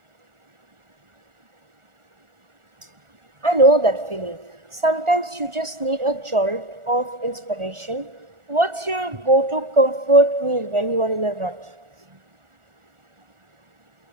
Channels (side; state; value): left; late; 1.4 ms